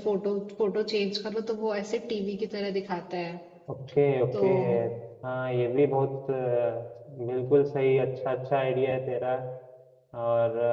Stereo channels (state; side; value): identical; both; correlation 1.00